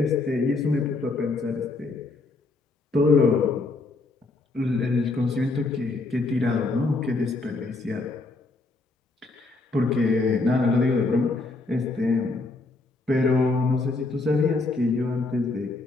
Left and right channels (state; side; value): quieter; right; 3.4 dB